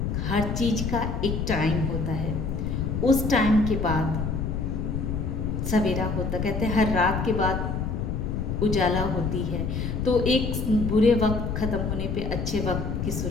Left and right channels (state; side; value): noise; left; rumble, 2 dB below the sound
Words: हर चीज़ का एक टाइम होता है। उस टाइम के बाद सवेरा होता, कहते हैं हर रात के बाद उजाला होती है। तो एक बुरे वक्त ख़त्म होने पे अच्छे वक्त की